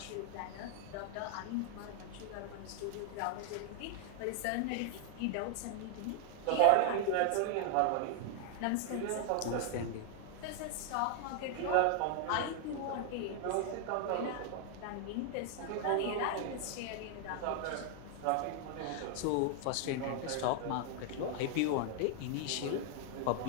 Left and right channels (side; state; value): both; different; correlation 0.00